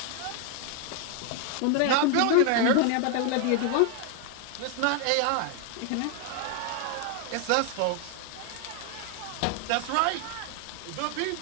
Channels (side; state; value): both; different; correlation 0.00